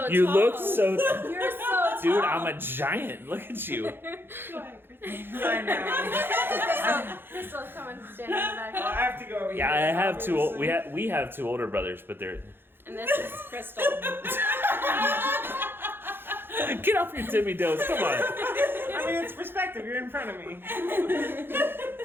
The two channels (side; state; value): left; late; 0.10 ms